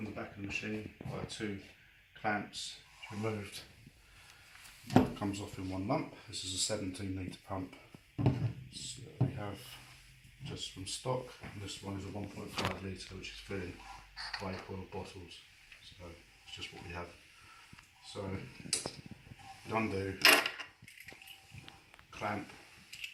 the back of the machine by 2 clamps removed, it comes off in one lump. This is a 17 litre pump. So we have just from stock, and this one is a 1.5 litre, which is filling vape oil bottles. So it's just what we have. So undo clamp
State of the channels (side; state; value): both; identical; correlation 1.00